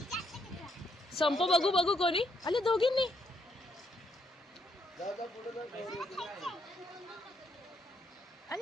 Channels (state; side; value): normal; both; correlation 0.74